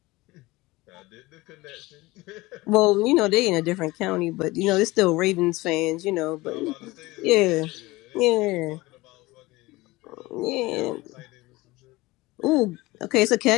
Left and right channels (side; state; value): right; quieter; 20.7 dB